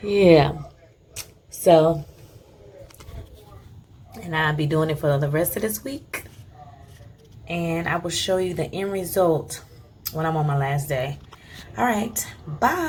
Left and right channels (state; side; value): identical; both; correlation 1.00